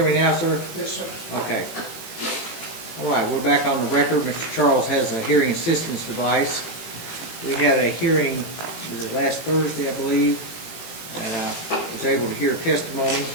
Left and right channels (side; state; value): right; late; 18 ms